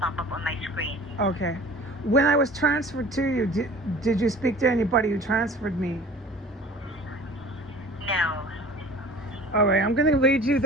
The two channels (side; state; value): both; normal; correlation 0.43